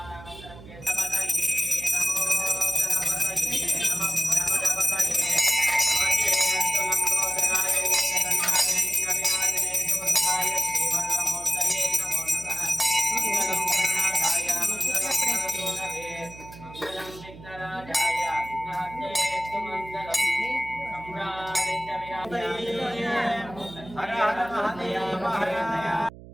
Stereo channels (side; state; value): right; noise; hum, 17 dB below the sound